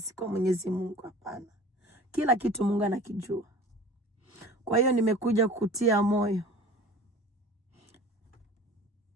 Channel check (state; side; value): normal; both; correlation 0.42